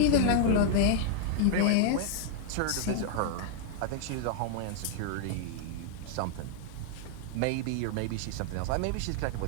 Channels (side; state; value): both; different; correlation 0.00